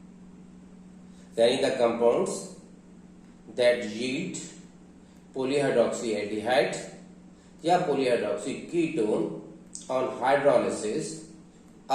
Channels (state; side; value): identical; both; correlation 1.00